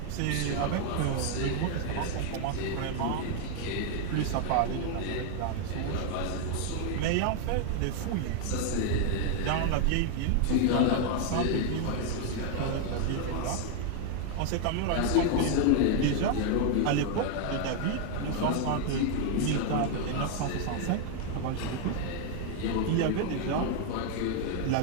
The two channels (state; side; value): different; both; correlation 0.00